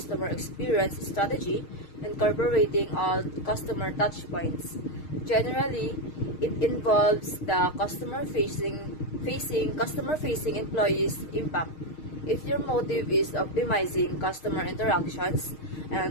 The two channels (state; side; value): late; right; 6.5 ms